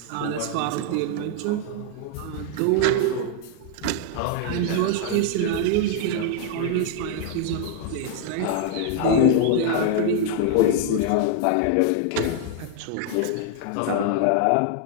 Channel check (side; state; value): both; different; correlation 0.00